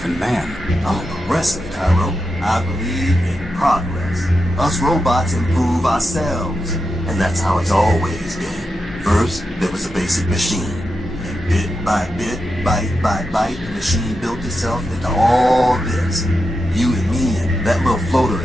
in man? I'm a progressive, Tyro. I believe in progress. Us robots improve ourselves. And that's how it's always been. First, there was a basic machine. And bit by bit, bite by bite, the machine built itself into all this. You and me and that little floater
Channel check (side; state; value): both; normal; correlation 0.88